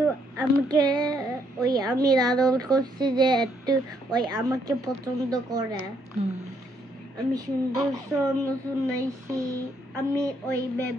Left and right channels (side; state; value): both; normal; correlation 0.72